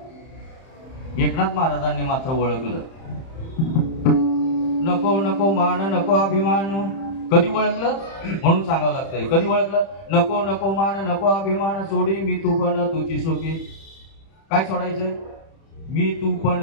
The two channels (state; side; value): late; right; 31 ms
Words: एकनाथ महाराजांनी मात्र ओळखलं. नको नको मान नको अभिमान. कधी ओळखलं म्हणून सांगावं लागतंय. कधी ओळखलं, नको नको मान नको अभिमान, सोडी मी तू पण तुझी सुखी. काय सोडायचंय, मी तू पण,